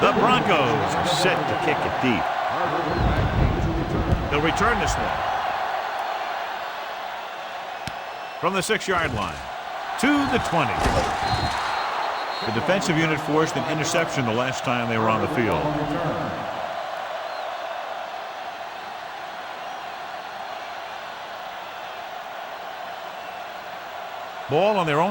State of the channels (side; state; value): both; identical; correlation 1.00